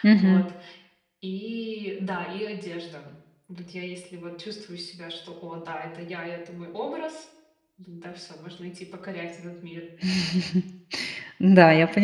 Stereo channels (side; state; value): both; identical; correlation 1.00